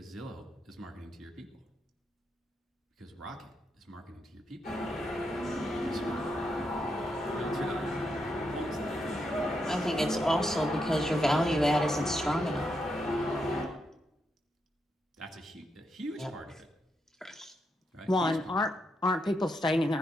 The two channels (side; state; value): both; normal; correlation 0.82